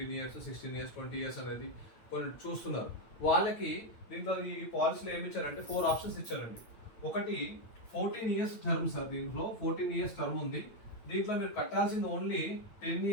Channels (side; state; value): right; late; 9.0 ms